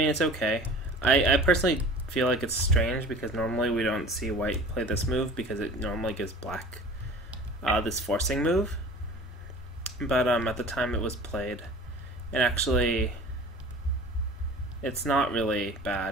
it's okay. I personally feel like it's strange because normally we don't see white play this move because it normally gives black this forcing move. But at the time it was played, and actually it's not really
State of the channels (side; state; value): both; normal; correlation 0.42